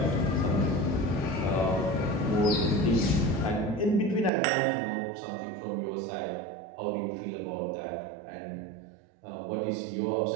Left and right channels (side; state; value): left; drops out; at 4.3 s